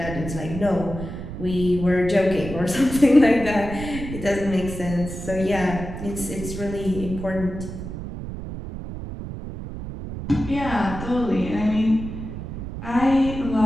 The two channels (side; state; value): right; noise; rumble, 8 dB below the sound